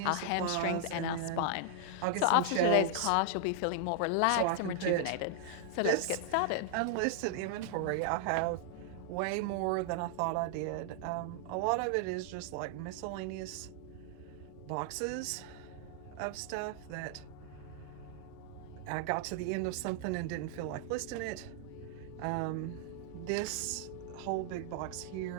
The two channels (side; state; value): both; different; correlation 0.00